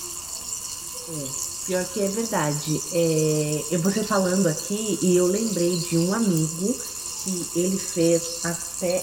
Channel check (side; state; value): right; noise; rumble, 25 dB below the sound